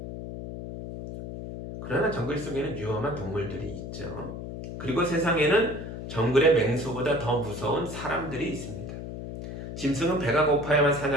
그러나 정글 속에는 위험한 동물들이 있죠. 그리고 세상에는 정글의 맹수보다 더 무서운 사람들이 있습니다. 짐승은 배가 고파야만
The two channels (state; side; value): noise; left; hum, 8 dB below the sound